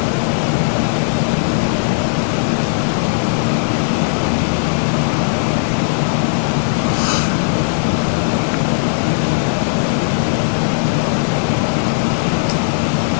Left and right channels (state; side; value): silent; right; digital silence